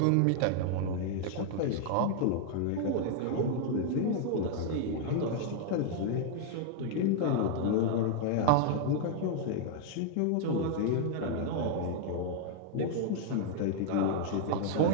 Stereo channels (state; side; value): different; both; correlation 0.00